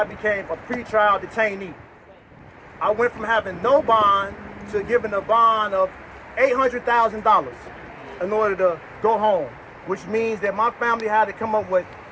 became a pretrial detainee. I went from having no bond to giving a bond of $800,000 in order to go home, which means that my family had to come up with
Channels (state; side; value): identical; both; correlation 1.00